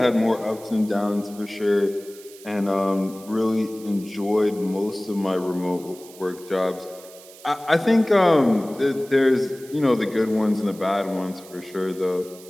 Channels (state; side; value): noise; right; hiss, 20 dB below the sound